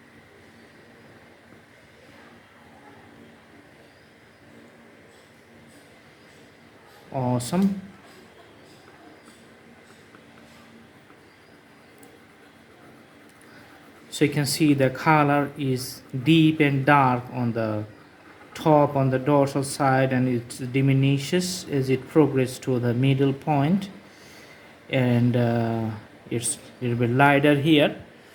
Awesome. So you can see the color is deep and dark on the top on the dorsal side, and it diminishes as it progresses to the middle point, and it's a little bit lighter here.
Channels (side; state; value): both; identical; correlation 1.00